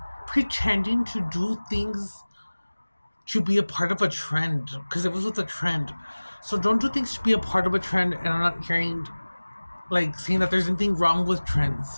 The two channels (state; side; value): inverted; both; correlation -1.00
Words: pretending to do things to be a part of a trend, because it was with a trend. So don't do things to be a part of a trend. And I'm not hearing saying that there's anything wrong with